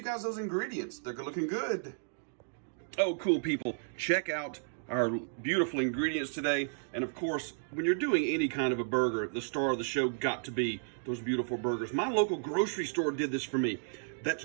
guys those ingredients. They're looking good. Oh, cool people. Check out our beautiful ingredients today. And of course, when you're doing any kind of a burger, the star of the show got to be those beautiful burgers. My local grocery store did this for me. That's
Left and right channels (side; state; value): left; silent; digital silence